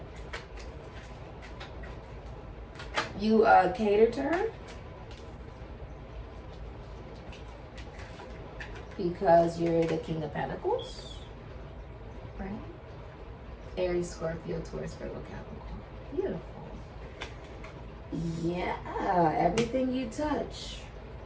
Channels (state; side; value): identical; both; correlation 1.00